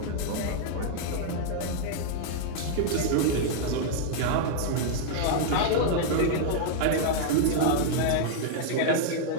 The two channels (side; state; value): both; different; correlation -0.01